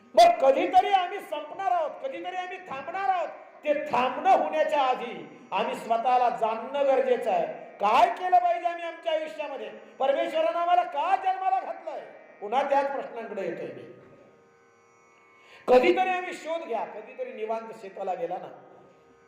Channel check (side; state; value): both; identical; correlation 1.00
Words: मग कधीतरी आम्ही संपणार आहोत, कधीतरी आम्ही थांबणार आहोत. ते थांबणं होण्याच्या आधी आम्ही स्वतःला जाणणं गरजेचं आहे. काय केलं पाहिजे आम्ही आमच्या आयुष्यामध्ये? परमेश्वरानं आम्हाला का जन्माला घातलंय? पुन्हा त्याच प्रश्नांकडे येतोय मी. कधीतरी आम्ही शोध घ्या, कधीतरी निवांत शेताला गेला ना,